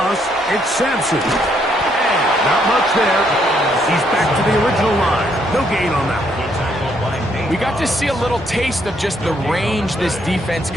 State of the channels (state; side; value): normal; both; correlation 0.72